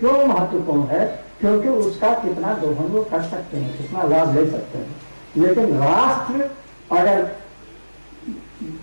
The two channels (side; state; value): both; inverted; correlation -1.00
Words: महत्वपूर्ण है? क्योंकि उसका कितना दोहन वो कर सकते हैं, कितना लाभ ले सकते हैं। लेकिन राष्ट्र अगर